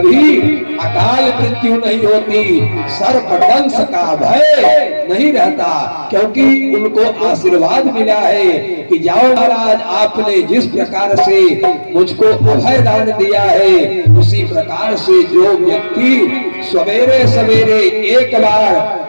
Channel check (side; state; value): both; inverted; correlation -1.00